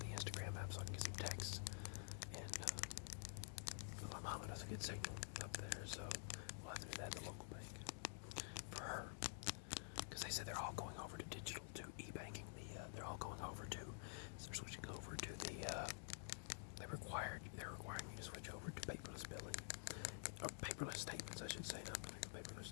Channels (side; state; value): right; silent; digital silence